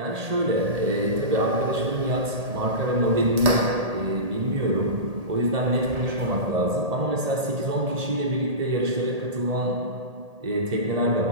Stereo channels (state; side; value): late; left; 1.8 ms